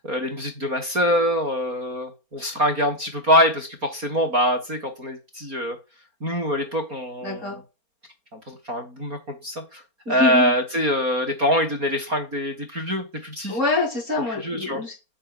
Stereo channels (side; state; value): left; late; 4.2 ms